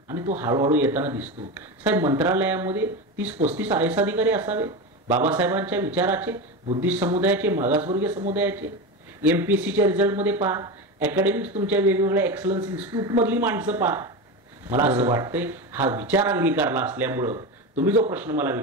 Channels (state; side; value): normal; both; correlation 0.21